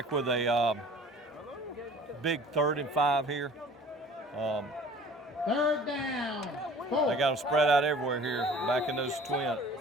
with a big 3rd and 5 here. 3rd down. 4. They got them spread out everywhere here, back in those twins.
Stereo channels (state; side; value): normal; both; correlation 0.48